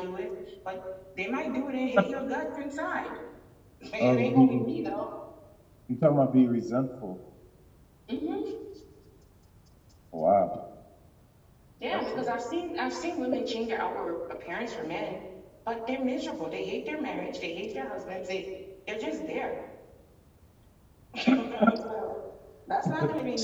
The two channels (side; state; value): both; identical; correlation 1.00